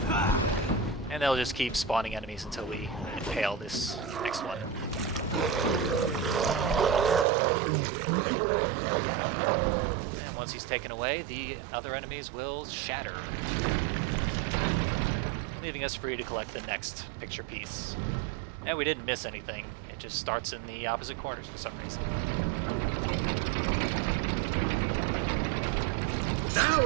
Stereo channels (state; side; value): drops out; left; at 7.2 s